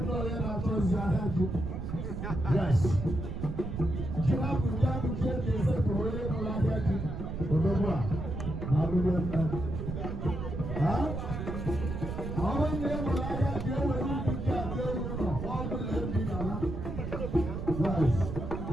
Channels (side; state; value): right; noise; rumble, 5 dB below the sound